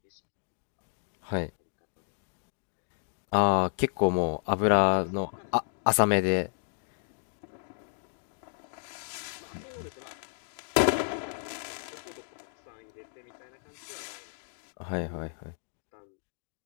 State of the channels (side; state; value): right; silent; digital silence